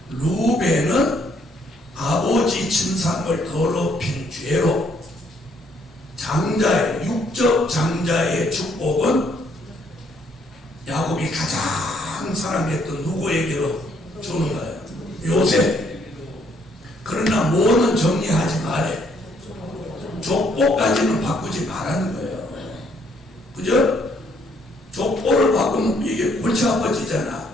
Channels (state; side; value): normal; both; correlation 0.68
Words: 루벤은 아버지 침상을 더럽힌 죄로 장자의 육적 장자의 축복은 야곱이 가장 사랑했던 누구에게로 주는 거예요? 요셉. 그러나 뭐는 정리하지 말해. 족보까지는 바꾸지 말라는 거예요. 그죠? 족보를 바꾸면 이게 골치 아파지잖아.